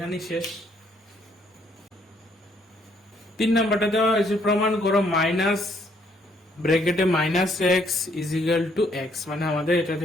শেষ। 3 নাম্বারটা দেওয়া হয়েছে, প্রমাণ করো মাইনাস ব্র্যাকেটে -x = x, মানে আমাদের এটা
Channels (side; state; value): both; normal; correlation 0.68